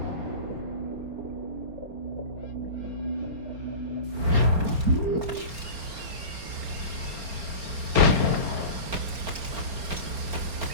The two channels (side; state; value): left; late; 4.2 ms